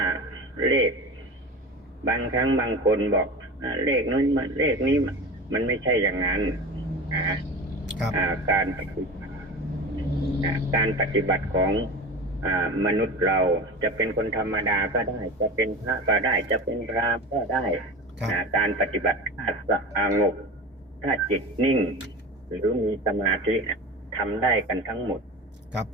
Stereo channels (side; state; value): both; normal; correlation 0.31